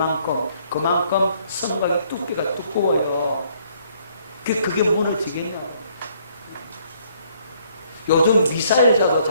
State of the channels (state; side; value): inverted; both; correlation -0.65